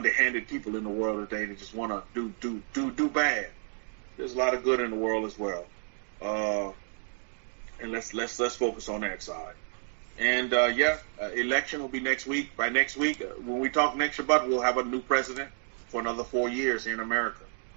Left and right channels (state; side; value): silent; left; 58 dB below the other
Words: people in the world today that just want to do bad. There's a lot of good in the world as well, and let's focus on that side. And election will be next week. By next week, when we talk next Shabbat, we'll have a new president for another 4 years here in America.